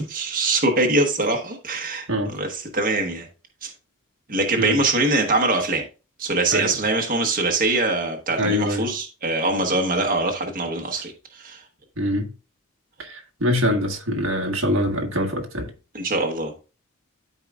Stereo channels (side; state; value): both; normal; correlation 0.13